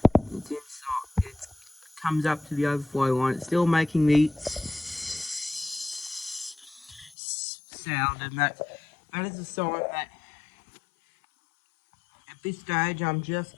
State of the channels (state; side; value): drops out; right; at 7.2 s